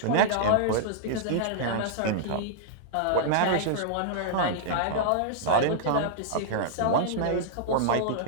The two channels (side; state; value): both; different; correlation -0.01